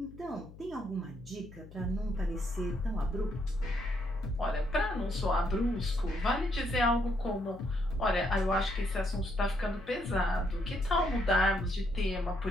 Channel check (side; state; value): left; noise; hum, 18 dB below the sound